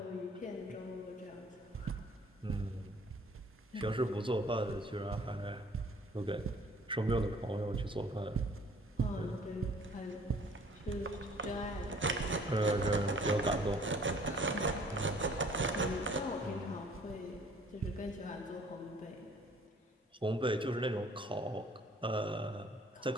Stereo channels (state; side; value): normal; both; correlation 0.56